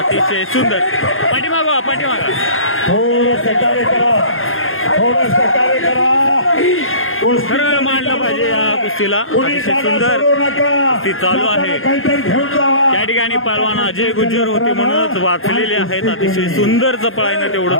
सुंदर. पाठीमागा पाठीमागा थोडं सहकार्य करा, थोडं सहकार्य करा. खरं मांडलं पाहिजे या कुस्तीला. अतिशय सुंदर कुस्ती चालू आहे. त्या ठिकाणी पहलवान अजय गुज्जर होते म्हणूनच वाचलेले आहेत. अतिशय सुंदर चपळाईनं तेवढं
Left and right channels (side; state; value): right; late; 0.60 ms